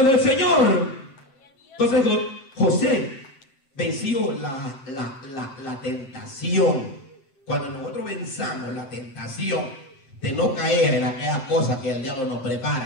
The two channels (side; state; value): right; late; 7.6 ms